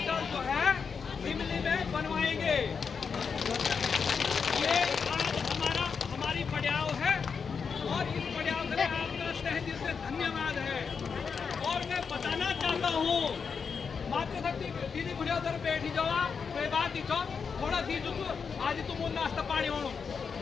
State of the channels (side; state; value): right; quieter; 5.9 dB